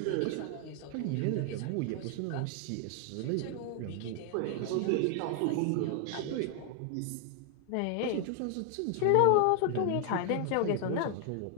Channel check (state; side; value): different; both; correlation 0.00